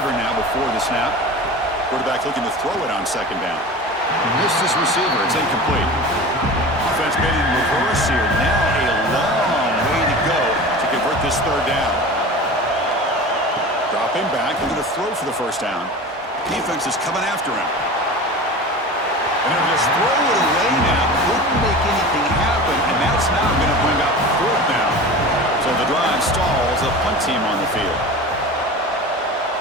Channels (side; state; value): both; normal; correlation 0.34